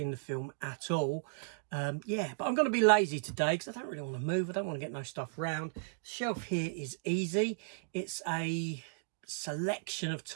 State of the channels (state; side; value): silent; left; digital silence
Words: the film at all. Yeah, but I'm going to be lazy today because I don't really want to move. I don't want to get no stuff around. The shelf here is easy. It's a selection of